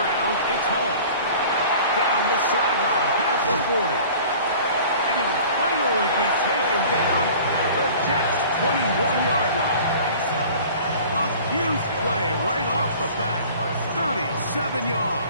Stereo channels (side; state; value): both; inverted; correlation -0.45